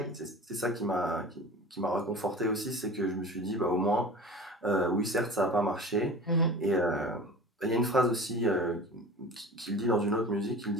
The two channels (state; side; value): normal; both; correlation 0.37